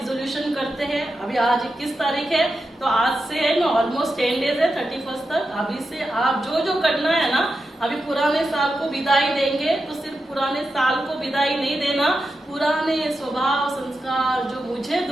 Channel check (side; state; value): both; normal; correlation 0.89